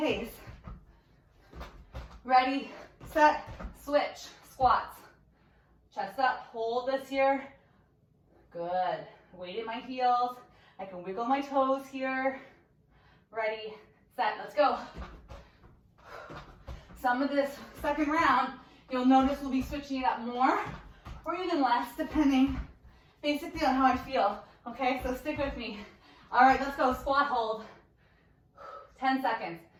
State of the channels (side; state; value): both; identical; correlation 1.00